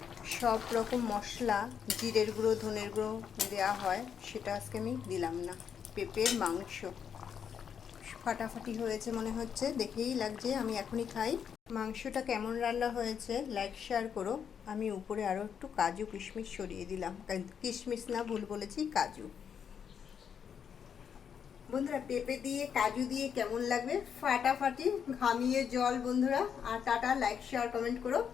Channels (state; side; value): quieter; right; 7.6 dB